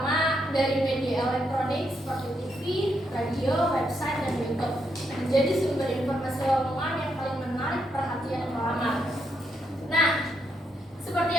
dari media elektronik seperti TV, radio, website, dan YouTube menjadi sumber informasi lowongan yang paling menarik perhatian pelamar. Nah, seperti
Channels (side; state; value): both; normal; correlation 0.79